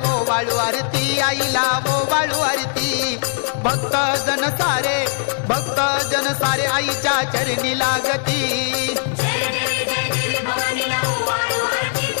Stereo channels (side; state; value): right; silent; 66 dB below the other